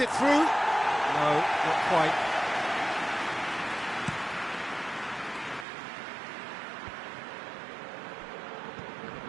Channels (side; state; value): left; drops out; at 5.7 s